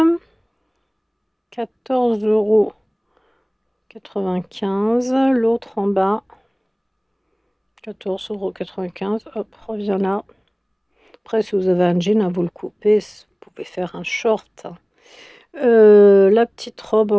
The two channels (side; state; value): both; identical; correlation 1.00